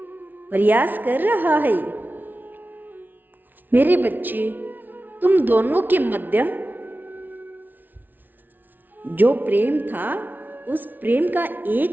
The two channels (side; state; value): left; late; 0.087 ms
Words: प्रयास कर रहा है। मेरे बच्चे, तुम दोनों के मध्य जो प्रेम था, उस प्रेम का